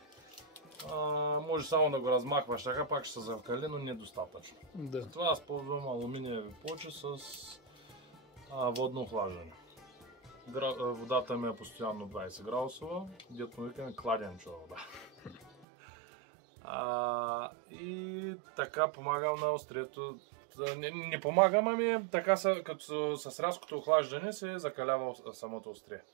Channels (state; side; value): drops out; left; at 15.7 s